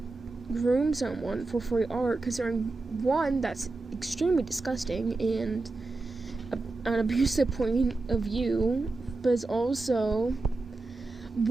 groom someone for free art, considering one, that's extremely disgusting and an abusive point of view, but it's also,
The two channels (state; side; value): quieter; left; 3.4 dB